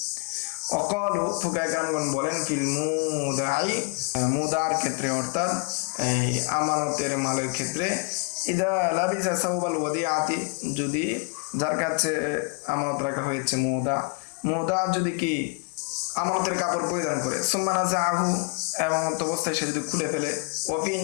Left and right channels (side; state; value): right; quieter; 32.5 dB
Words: অকালু, ফুকাহায়ে কেরামগণ বলেন ফিল মুদাই, মুদার ক্ষেত্রে অর্থাৎ এই আমানতের মালের ক্ষেত্রে, ইদা লাবিসা সাওবাল ওয়াদিআতি, যদি যার কাছে আমানত রাখা হয়েছে মুদা যদি কি আমানতের কাপড় পরিধান করে, সুম্মা নাযাআহু, এবং অবস্থায় সে যদি খুলে ফেলে, ওয়া ফি